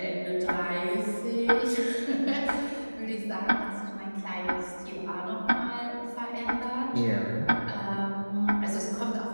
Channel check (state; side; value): inverted; both; correlation -1.00